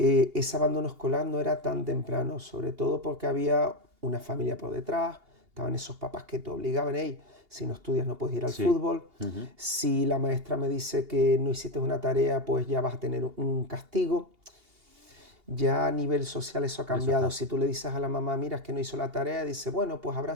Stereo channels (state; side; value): late; left; 2.8 ms